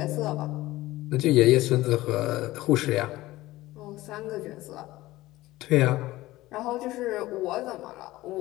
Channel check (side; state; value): right; quieter; 17.6 dB